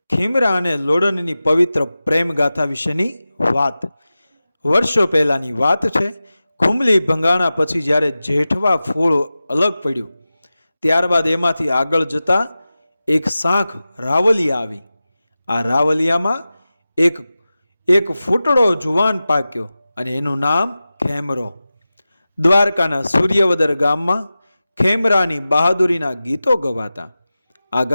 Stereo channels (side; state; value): both; inverted; correlation -0.95